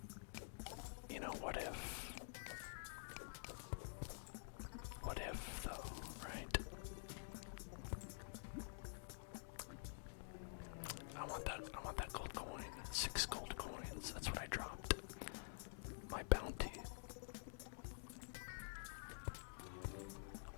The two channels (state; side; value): silent; right; digital silence